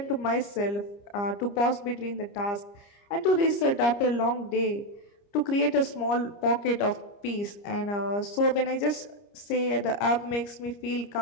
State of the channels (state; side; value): late; right; 30 ms